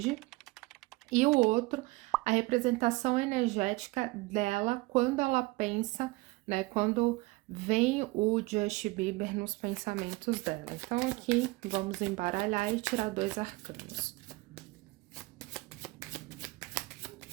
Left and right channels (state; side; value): quieter; left; 22.8 dB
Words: e o outro, a representação energética dela quando ela pensa, né? Quando vem o Justin Bieber nos pensamentos dela. Então, aqui vamos embaralhar e tirar 2 arcanos.